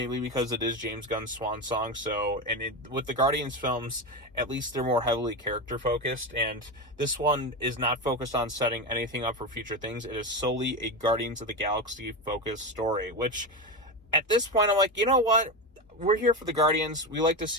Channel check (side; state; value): both; normal; correlation 0.17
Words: because it is James Gunn's swan song. So, with the Guardians films, at least they're more heavily character focused, and this one is not focused on setting anything up for future things. It is solely a Guardians of the Galaxy focused story, which at this point I'm like, you know what? We're here for the Guardians. We like to